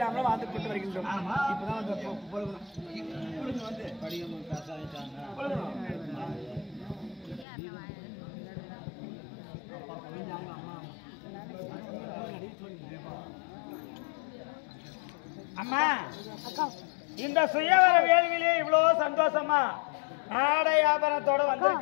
வாழ்ந்து கொண்டு வருகின்றோம். இப்பதான் அம்மா இந்த சுயவர வேள்வியிலே இவ்வளவு சந்தோஷமா ஆடை ஆபரணத்தோட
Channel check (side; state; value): right; drops out; at 7.5 s